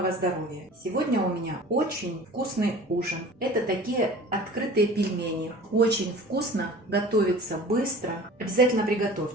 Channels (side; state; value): both; normal; correlation 0.42